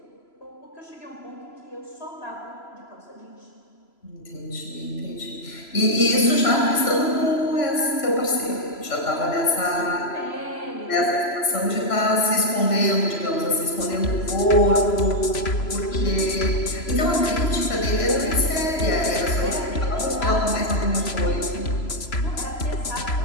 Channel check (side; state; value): right; late; 3.0 ms